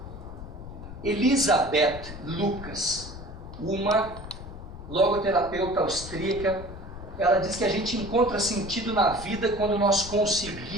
Elisabeth Lucas, uma logoterapeuta austríaca, ela diz que a gente encontra sentido na vida quando nós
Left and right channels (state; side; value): noise; left; rumble, 12 dB below the sound